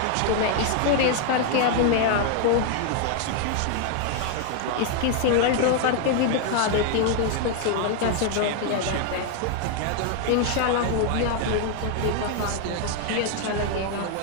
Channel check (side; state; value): both; different; correlation 0.00